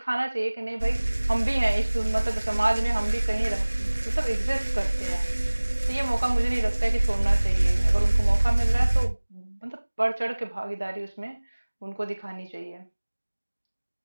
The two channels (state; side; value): inverted; both; correlation -1.00